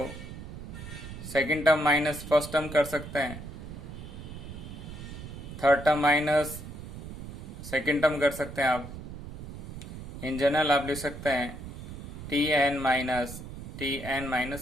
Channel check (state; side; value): noise; right; rumble, 11 dB below the sound